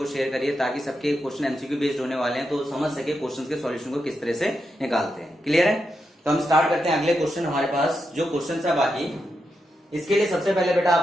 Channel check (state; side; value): normal; both; correlation 0.85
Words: शेयर करिए ताकि सबके क्वेश्चन एमसीक्यू बेस्ड होने वाले हैं तो समझ सके क्वेश्चन के सॉल्यूशन को किस तरह से निकालते हैं। क्लियर है? तो हम स्टार्ट करते हैं। अगले क्वेश्चन हमारे पास जो क्वेश्चन है बाकी, इसके लिए सबसे पहले बेटा